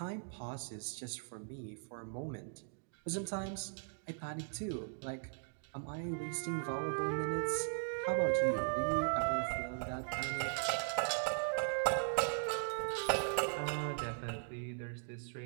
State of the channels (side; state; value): left; silent; digital silence